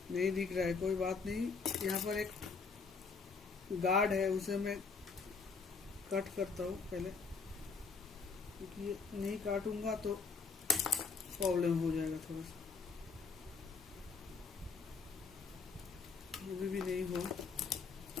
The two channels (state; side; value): quieter; right; 5.0 dB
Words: नहीं दिख रहा है, कोई बात नहीं। यहाँ पर एक गार्ड है, उसे मैं कट करता हूँ पहले, क्योंकि ये नहीं काटूंगा तो प्रॉब्लम हो जाएगा थोड़ा सा। अभी भी नहीं हुआ,